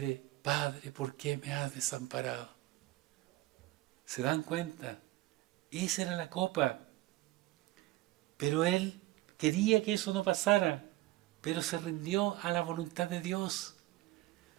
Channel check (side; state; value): left; quieter; 17.9 dB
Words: Padre, ¿por qué me has desamparado? ¿Se dan cuenta? Esa era la copa. Pero Él quería que eso no pasara, pero se rindió a la voluntad de Dios.